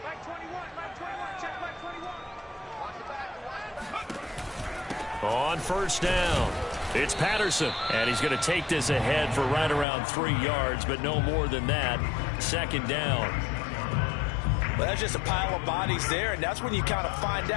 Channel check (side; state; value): right; drops out; at 9.9 s